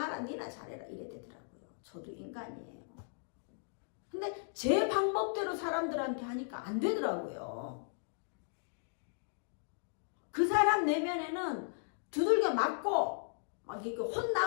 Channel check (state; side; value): silent; right; digital silence